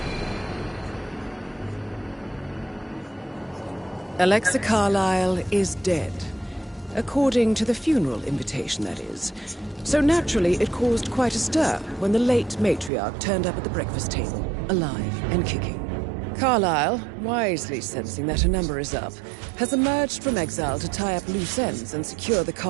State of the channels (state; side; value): drops out; left; at 12.9 s